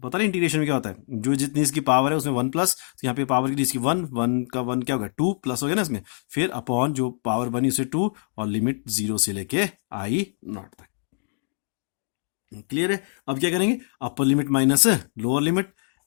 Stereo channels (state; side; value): silent; right; 62 dB below the other